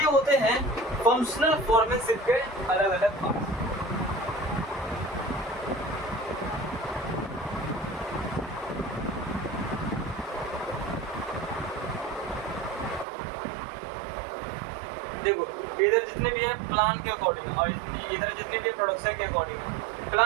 होते हैं फंक्शनल फॉर्मेशिप के अलग अलग पार्ट। देखो इधर जितने भी हैं प्लान के अकॉर्डिंग और इधर जितने भी प्रोडक्शन के अकॉर्डिंग।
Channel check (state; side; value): drops out; left; at 13.1 s